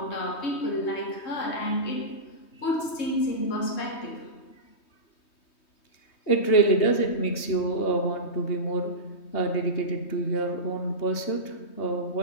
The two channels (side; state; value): right; late; 3.2 ms